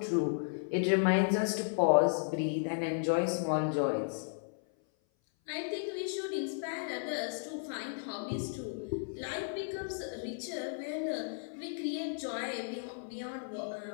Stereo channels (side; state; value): right; silent; 55 dB below the other